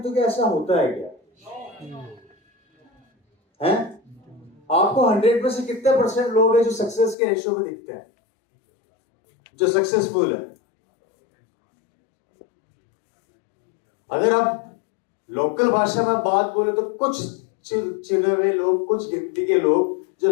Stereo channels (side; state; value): right; drops out; at 7.2 s